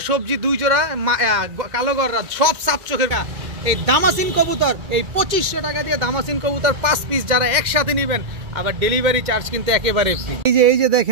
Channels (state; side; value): late; left; 2.1 ms